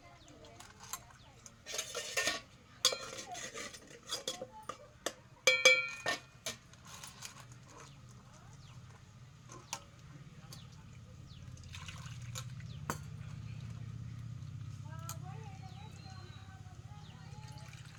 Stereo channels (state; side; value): identical; both; correlation 1.00